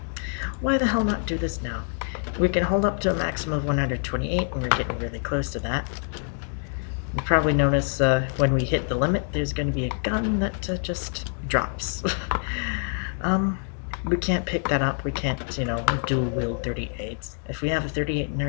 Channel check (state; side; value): silent; right; 55 dB below the other